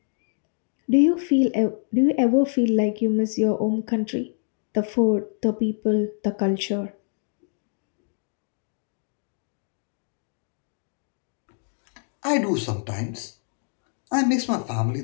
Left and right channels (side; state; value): right; silent; digital silence